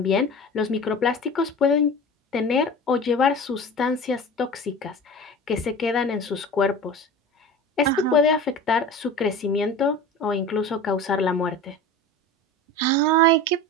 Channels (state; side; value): normal; both; correlation 0.35